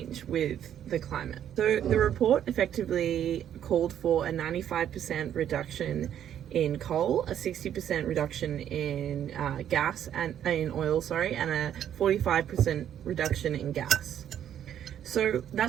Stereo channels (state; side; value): quieter; left; 10.1 dB